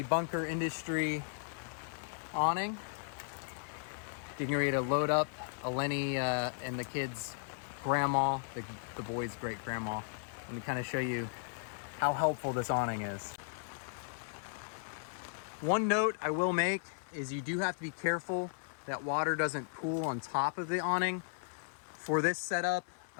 bunker industry awning, getting ready to load up Eleni and the kids' grandma, the boys' great grandma. Let me kind of show you how helpful this awning is. One note I will make is you do have to be careful that water doesn't pool on top of the awning. For this setup,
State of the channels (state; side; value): silent; right; 54 dB below the other